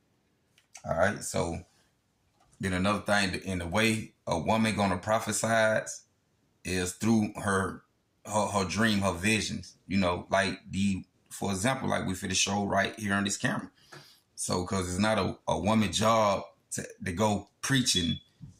All right. So then another thing, in the way a woman gonna prophesy is through her dream, her visions. For example, like we for the show right here on this camera. So, because it's not a woman's job to go preach and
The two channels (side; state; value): both; identical; correlation 1.00